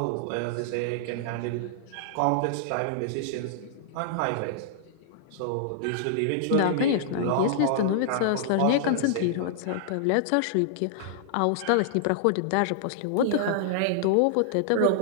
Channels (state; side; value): different; both; correlation -0.01